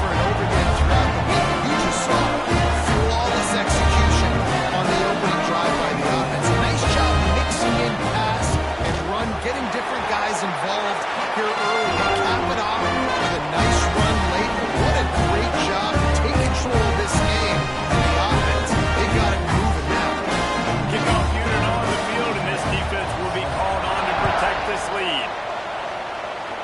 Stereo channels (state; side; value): identical; both; correlation 1.00